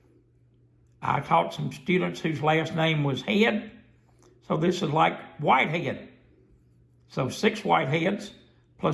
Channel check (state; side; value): identical; both; correlation 1.00